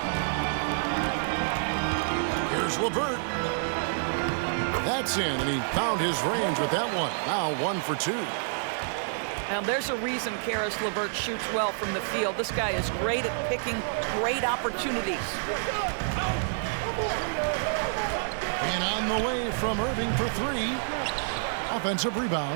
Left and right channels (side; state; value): left; silent; 59 dB below the other